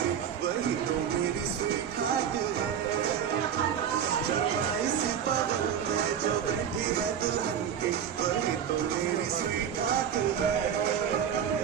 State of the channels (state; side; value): quieter; left; 8.5 dB